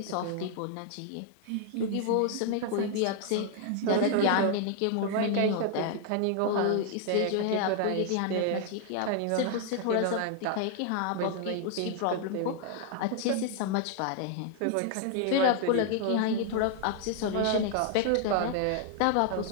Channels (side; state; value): both; different; correlation 0.00